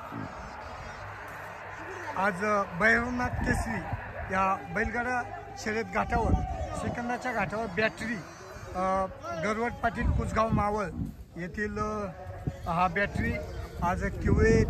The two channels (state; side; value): identical; both; correlation 1.00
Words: आज भैरवनाथ केसरी या बैलगाडा शर्यत घाटावर सेकंदाच्या घाटावर बॅटरी गरवट पाटील कुसगाव मावळ येथील हा बॅटरी आज किवळे